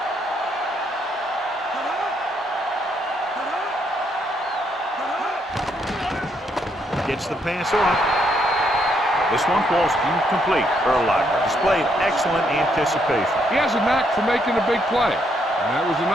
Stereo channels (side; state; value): both; normal; correlation 0.74